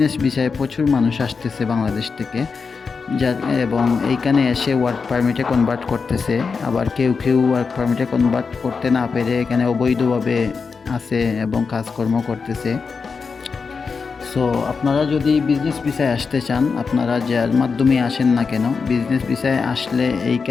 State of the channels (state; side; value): quieter; right; 5.1 dB